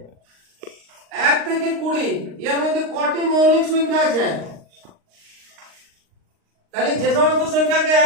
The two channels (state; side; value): late; left; 39 ms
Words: 1 থেকে 20 এর মধ্যে কটি মৌলিক সংখ্যা আছে? তাহলে যে সমস্ত সংখ্যাকে